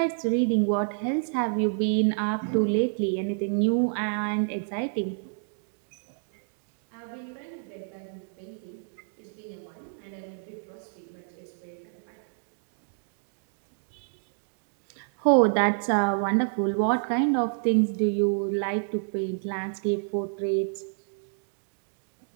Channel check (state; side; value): silent; left; digital silence